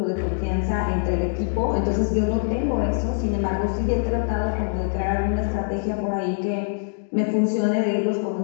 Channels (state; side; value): silent; right; digital silence